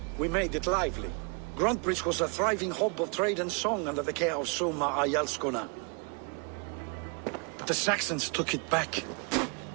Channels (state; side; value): quieter; left; 35.3 dB